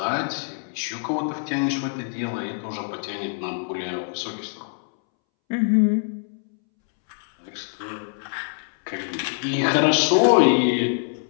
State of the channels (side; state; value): right; silent; 62 dB below the other